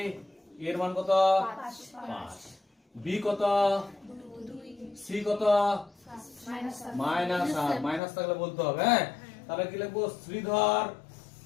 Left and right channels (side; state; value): right; drops out; at 8.0 s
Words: a এর মান কত? 5। b কত? 2 c কত? মাইনাস। আর মাইনাস থাকলে বলতে হবে, হ্যাঁ। তাহলে কি লিখবো? শ্রীধর